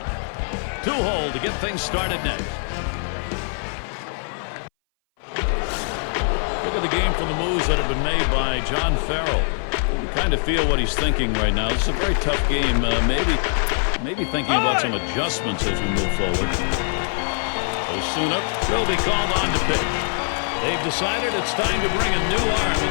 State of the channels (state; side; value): silent; right; 59 dB below the other